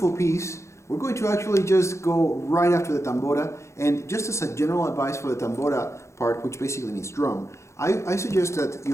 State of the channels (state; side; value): late; right; 0.14 ms